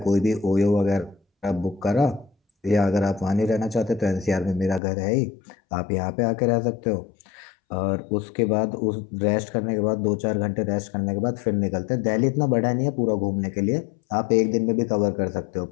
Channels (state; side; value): drops out; right; at 4.8 s